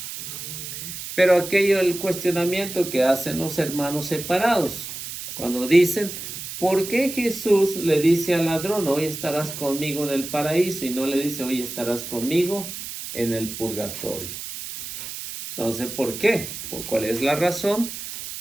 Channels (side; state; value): right; noise; hiss, 9 dB below the sound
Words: Pero aquello, el cuestionamiento que hacen los hermanos separados, cuando dicen, ¿por qué Jesús le dice al ladrón, hoy estarás conmigo en el paraíso, y no le dice, hoy estarás conmigo en el purgatorio? Entonces, ¿por qué? ¿Cuál es la razón?